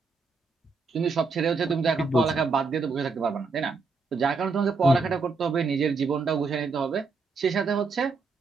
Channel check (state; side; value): quieter; left; 4.3 dB